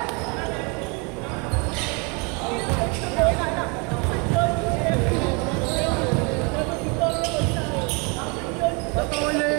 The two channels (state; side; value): quieter; left; 31.9 dB